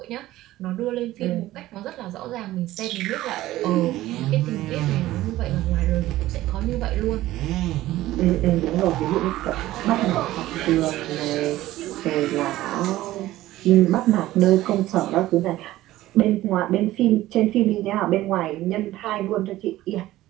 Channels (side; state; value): left; quieter; 15.8 dB